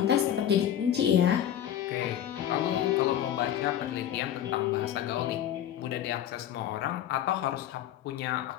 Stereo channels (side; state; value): right; quieter; 10.7 dB